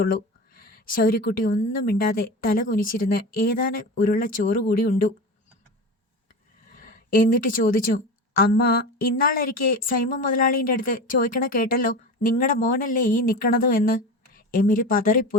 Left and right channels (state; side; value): normal; both; correlation 0.28